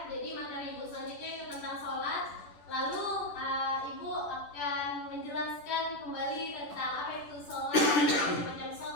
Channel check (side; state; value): right; late; 10 ms